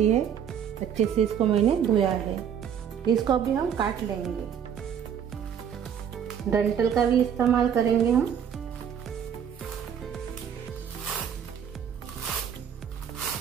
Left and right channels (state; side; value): quieter; left; 8.3 dB